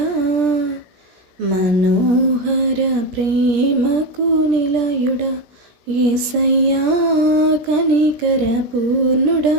మనోహర ప్రేమకు నిలయుడా. యేసయ్య కనికర పూర్ణుడా,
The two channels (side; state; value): left; late; 17 ms